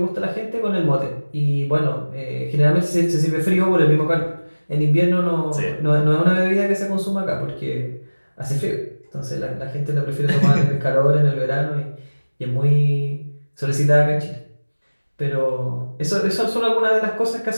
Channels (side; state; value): both; inverted; correlation -1.00